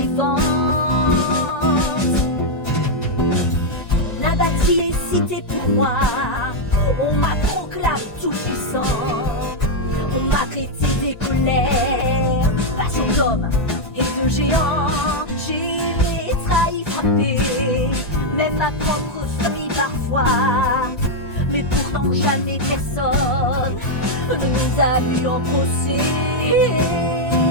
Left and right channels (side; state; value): right; late; 1.9 ms